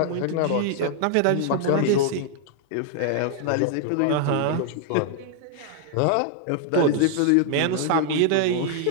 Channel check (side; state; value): both; different; correlation 0.00